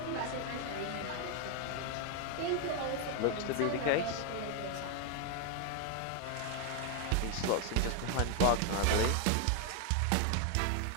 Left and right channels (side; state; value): both; different; correlation 0.01